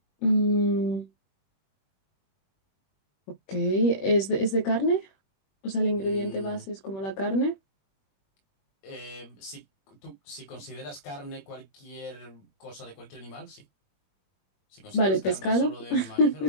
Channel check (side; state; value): right; late; 21 ms